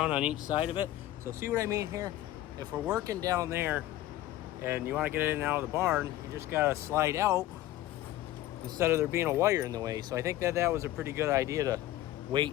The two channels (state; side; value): quieter; right; 14.7 dB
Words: on each side of it. So see what I mean here? If we're working down there and you want to get in and out of the barn, you just got to slide out instead of there being a wire in the way. So I think that was a pretty good idea to